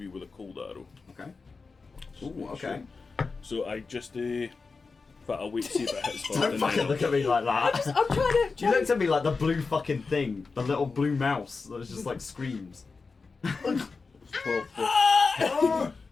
with a cold arrow. Okay. So Ooh, make okay. sure. So I just in fact, I'll wait to see if it hits first. Don't and fucking then look at me like that. I'm trying to. You looked at me like the blue fucking thing, the little blue mouse that was just like screams. 12,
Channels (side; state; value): right; quieter; 4.4 dB